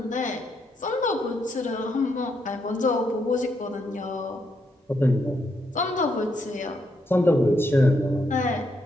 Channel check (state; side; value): normal; both; correlation 0.78